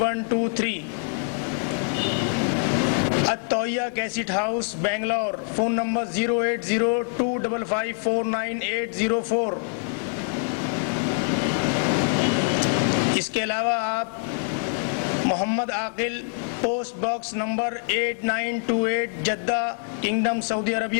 التویہ cassette house, Bangalore. Phone number 08025549804۔ اس کے علاوہ آپ Mohammad Aqil, post box number 8928، Jeddah, kingdom, Saudi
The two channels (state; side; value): silent; right; 56 dB below the other